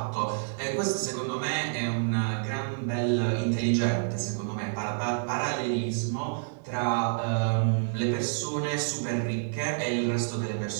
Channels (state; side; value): silent; left; 59 dB below the other